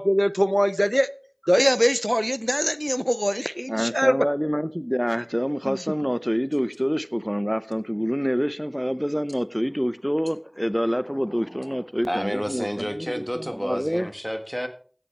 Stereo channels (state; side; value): identical; both; correlation 1.00